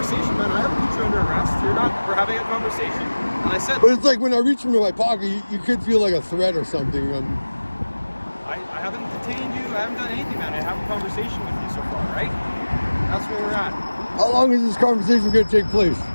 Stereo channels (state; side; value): inverted; both; correlation -1.00